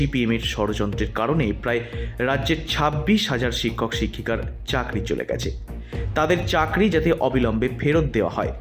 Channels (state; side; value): identical; both; correlation 1.00